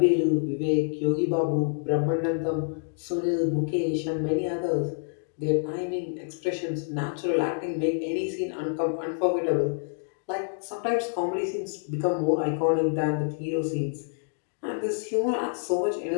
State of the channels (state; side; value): silent; right; digital silence